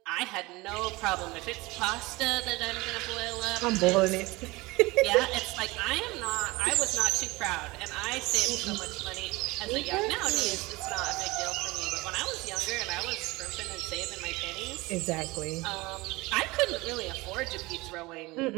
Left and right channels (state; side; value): quieter; left; 22.2 dB